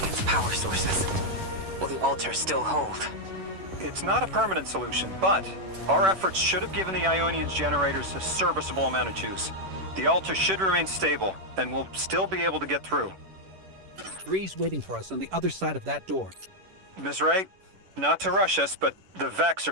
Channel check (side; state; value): left; late; 10 ms